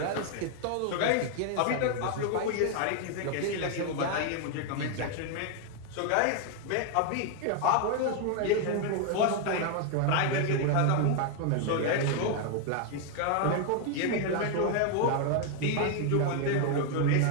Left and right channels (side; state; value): both; different; correlation 0.00